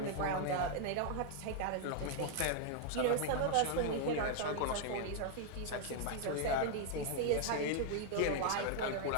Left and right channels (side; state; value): both; different; correlation 0.00